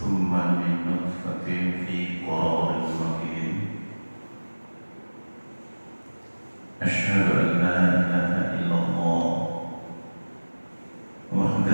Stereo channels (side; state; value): both; inverted; correlation -1.00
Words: min nutfatin fi qararin makin. Asyhadu an la ilaha illallah